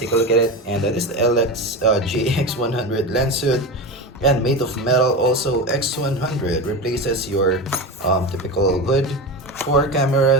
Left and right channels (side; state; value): both; normal; correlation 0.23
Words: a look at it. And this is the JX100 lens hood, and made of metal. Also, X100 replaces your typical hood for